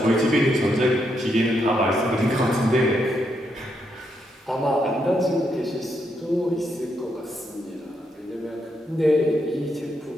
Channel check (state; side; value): normal; both; correlation 0.79